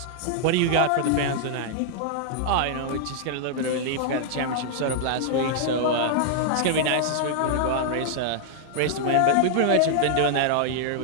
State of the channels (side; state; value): both; different; correlation -0.01